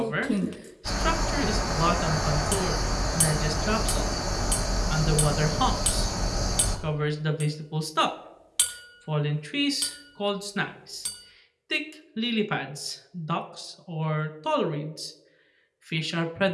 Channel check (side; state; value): both; identical; correlation 1.00